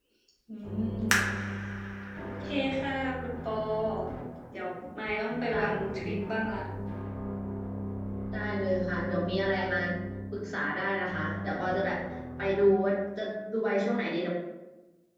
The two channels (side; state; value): both; identical; correlation 1.00